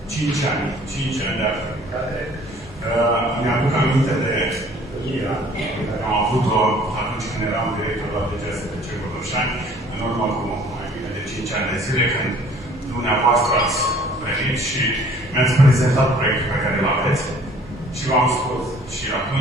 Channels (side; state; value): both; normal; correlation 0.54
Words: 5 ani de activitate. Mi-aduc aminte de întâlnirea pe care am avut-o atunci când eram director la DGSTC Botoșani, în urmă cu mai bine de 5 ani de zile, când dumneavoastră ați venit și mi-ați prezentat proiectul pe care îl aveți și v-am spus și